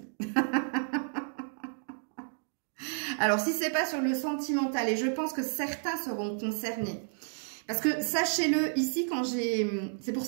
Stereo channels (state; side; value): silent; left; digital silence